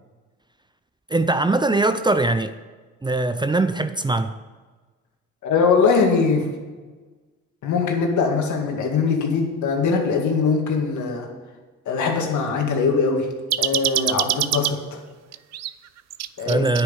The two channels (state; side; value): normal; both; correlation 0.26